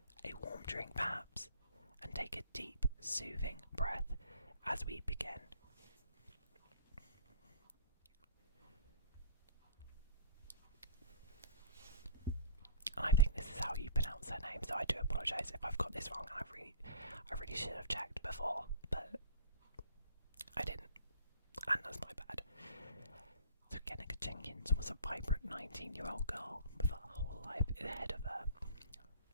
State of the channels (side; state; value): both; inverted; correlation -0.46